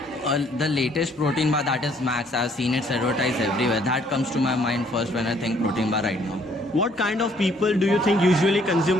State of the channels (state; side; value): normal; both; correlation 0.63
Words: The latest protein bar, that is Max, I've seen it advertised everywhere. That comes to my mind first when I think protein bar right now. What kind of people do you think usually